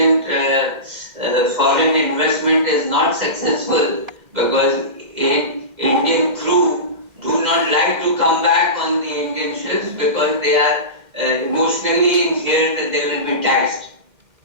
foreign investment is not successful, because Indian crew do not like to come back on the Indian ships because they are emotionally in fear that they will be taxed.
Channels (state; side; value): late; left; 2.1 ms